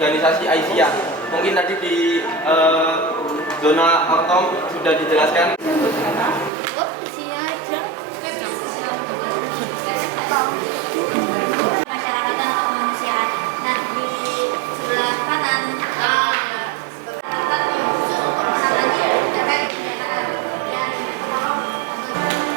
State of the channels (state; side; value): drops out; left; at 6.5 s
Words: Aisyah. Mungkin tadi di zona autom sudah dijelaskan. Masyarakat dan kemanusiaan. Nah, di sebelah kanan